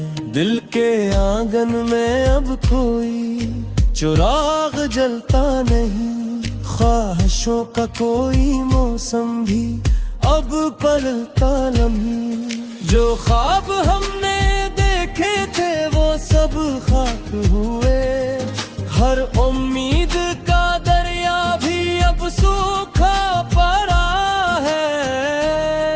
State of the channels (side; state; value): both; identical; correlation 1.00